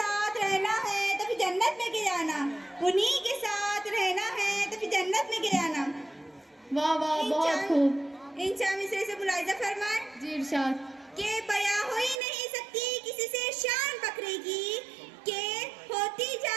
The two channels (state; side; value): drops out; left; at 12.2 s